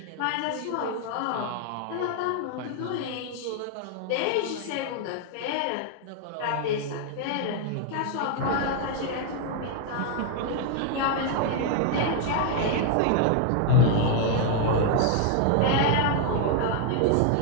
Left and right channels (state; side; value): different; both; correlation 0.00